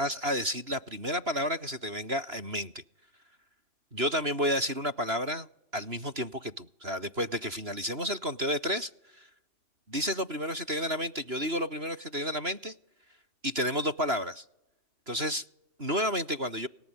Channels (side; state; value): left; late; 2.9 ms